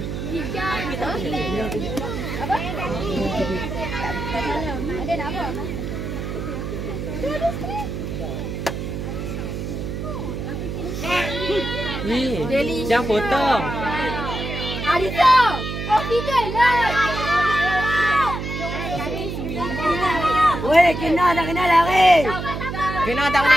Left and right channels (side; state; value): right; noise; hum, 5 dB below the sound